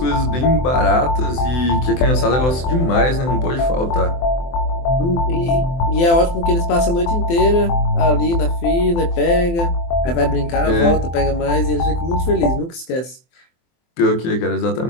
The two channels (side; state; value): right; late; 24 ms